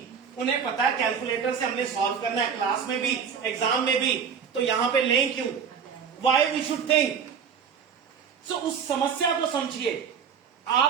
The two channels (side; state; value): left; quieter; 6.9 dB